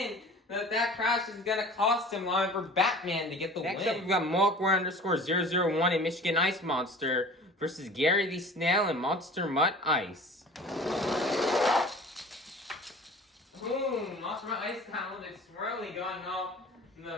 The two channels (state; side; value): normal; both; correlation 0.43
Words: That crash is gonna cost him line for Batman to get the win. Next up, we've got Malkware_001 in Michigan Ice Monster versus Gary the Snail in Monster Mutt Ice. Ooh, Monster Mutt Ice got a little bit swirly going off